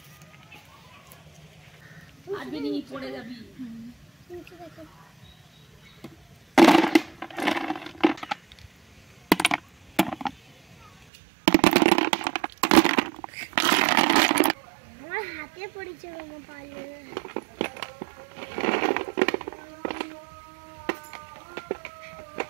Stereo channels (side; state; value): left; drops out; at 10.9 s